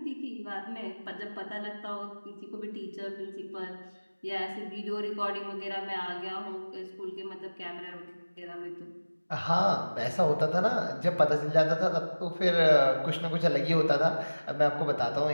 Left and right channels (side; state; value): both; inverted; correlation -1.00